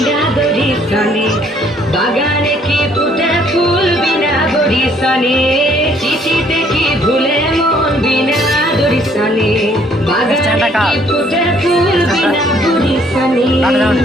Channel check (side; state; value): both; normal; correlation 0.63